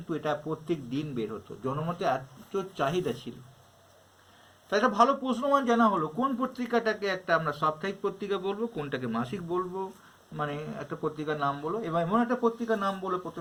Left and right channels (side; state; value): both; identical; correlation 1.00